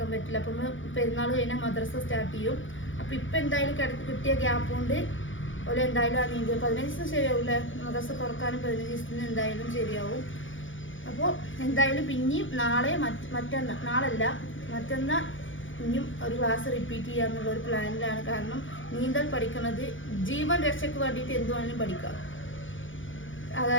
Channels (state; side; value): late; right; 0.57 ms